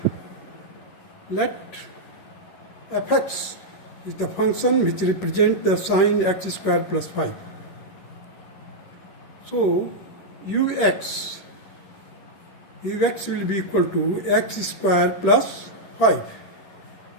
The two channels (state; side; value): late; right; 10 ms